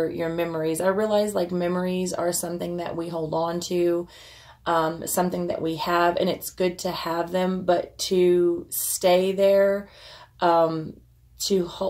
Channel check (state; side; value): identical; both; correlation 1.00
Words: memories. I realize, like, memories are something that we hold on to, something that we have, and it's good to have them, but to stay there, to